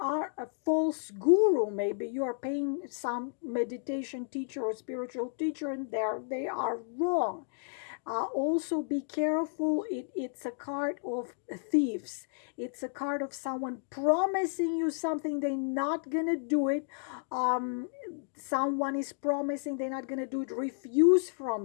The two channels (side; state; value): right; silent; digital silence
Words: false guru. Maybe you are paying some meditation teacher or spiritual teacher and they are wrong. Also be careful, it's a card of thieves. It's a card of someone promising you something, they're not gonna do it. Someone is promising they're not gonna do it. Refuse from